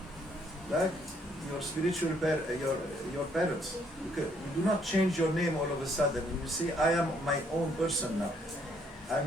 Like your spiritual your parents. You do not change your name all of a sudden and you say, I am my own person now. I'm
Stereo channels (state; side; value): normal; both; correlation 0.68